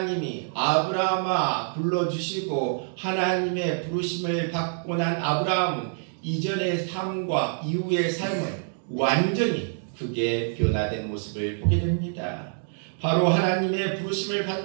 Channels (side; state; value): left; silent; digital silence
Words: 아브라함아 불러주시고 하나님의 부르심을 받고 난 아브라함은 이전의 삶과 이후의 삶은 완전히 크게 변화된 모습을 보게 됩니다. 바로 하나님의 부르심을